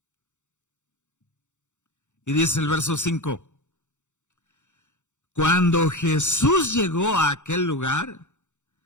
Y dice el verso 5, cuando Jesús llegó a aquel lugar,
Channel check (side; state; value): right; late; 0.85 ms